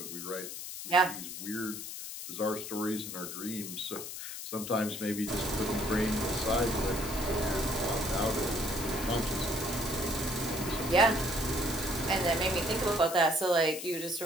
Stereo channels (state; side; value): noise; left; hiss, 8 dB below the sound